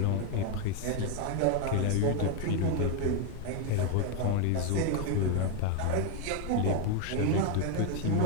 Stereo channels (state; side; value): different; both; correlation 0.01